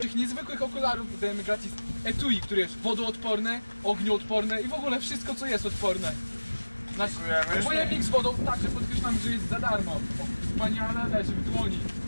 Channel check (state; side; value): inverted; both; correlation -1.00